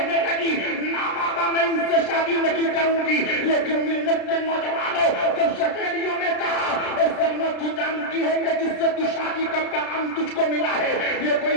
لگی نا بابا میں ان سے شادی نہیں کروں گی۔ لیکن ملت کے نوجوانوں، جب سہیلیوں نے کہا اے سلمہ تو جانتی ہے کہ جس سے تو شادی کا پیغام تجھ کو ملا ہے یہ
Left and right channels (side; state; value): right; late; 33 ms